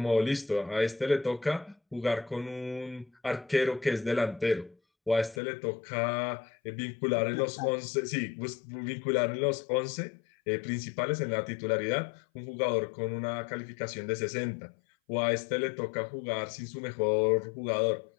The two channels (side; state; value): right; drops out; at 5.4 s